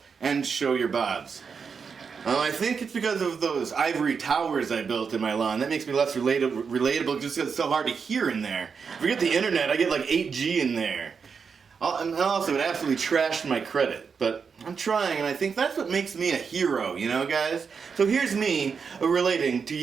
and show your bobs. I think it's because of those ivory towers I built in my lawn. That makes me less relatable just because it's so hard to hear in there. Forget the internet, I get like 8G in there. And also, it absolutely trashed my credit. But I'm trying, and I think that's what makes me a hero, you know, guys? So here's me relating to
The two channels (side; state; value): left; quieter; 5.9 dB